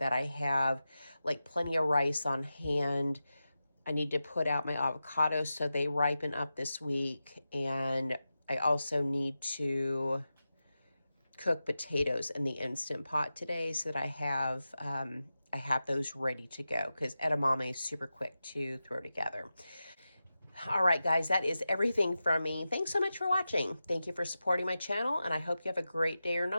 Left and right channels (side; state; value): both; inverted; correlation -0.92